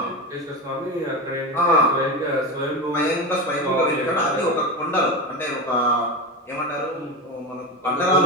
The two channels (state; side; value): normal; both; correlation 0.21